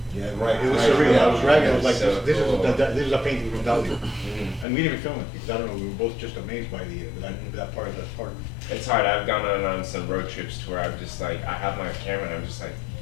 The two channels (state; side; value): drops out; right; at 4.7 s